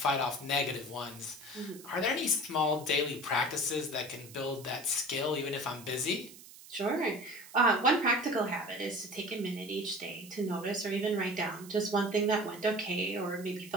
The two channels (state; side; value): noise; right; hiss, 18 dB below the sound